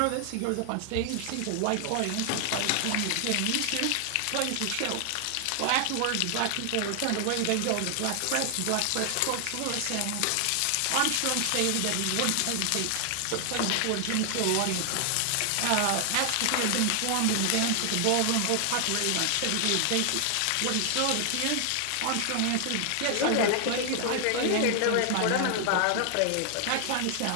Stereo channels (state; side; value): different; both; correlation 0.00